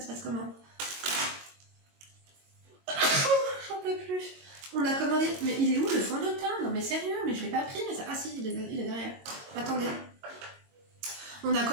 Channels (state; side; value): late; left; 22 ms